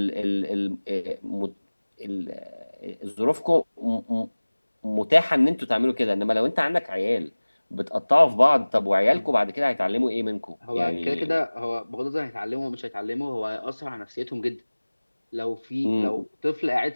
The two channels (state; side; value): inverted; both; correlation -1.00